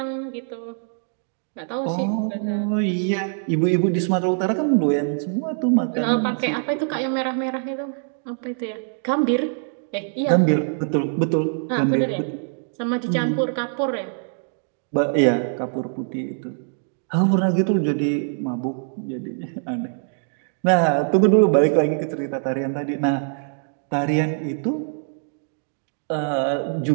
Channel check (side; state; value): left; silent; digital silence